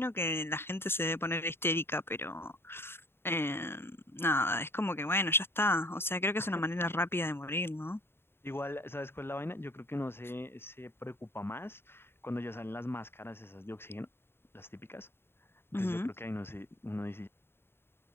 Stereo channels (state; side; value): late; right; 0.11 ms